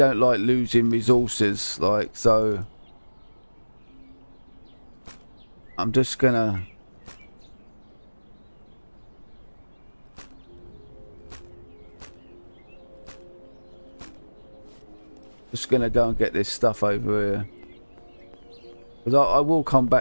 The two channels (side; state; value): both; inverted; correlation -1.00